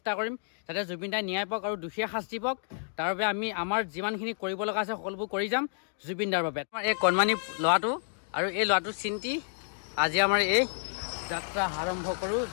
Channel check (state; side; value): silent; right; digital silence